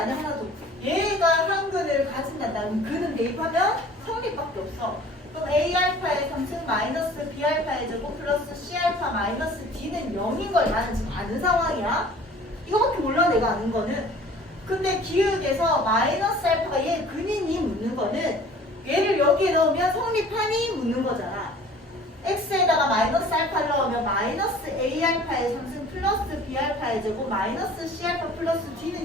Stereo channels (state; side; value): normal; both; correlation 0.48